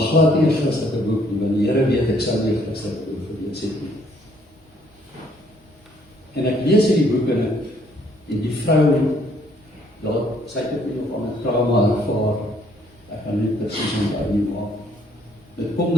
nie 'n Christelike boek nie, want die Here weet ek sou nie 'n Christelike boek gelees het nie. En ek lees hierdie boek en die vrou, sy het ook nog aan 'n trauma ervaar, ek kan nie presies onthou nie, maar dit kom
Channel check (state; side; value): normal; both; correlation 0.65